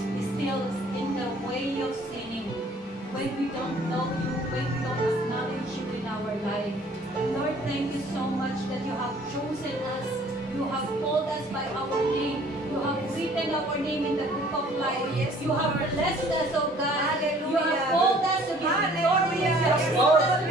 in the way of sinning, when we don't know you, when we don't acknowledge you in our life. Lord, thank you so much that you have chosen us. You have called us by our name. You have written our name in the book of life. Oh, yes, you have Lord. blessed us, oh God. Hallelujah. You have called us to be victorious. You have called us to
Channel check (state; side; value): normal; both; correlation 0.55